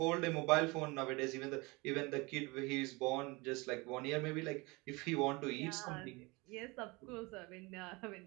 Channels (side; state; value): left; quieter; 25.4 dB